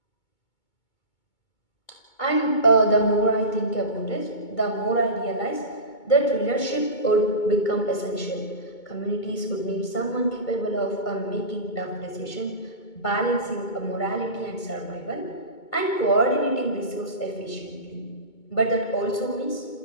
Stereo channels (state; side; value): late; right; 2.2 ms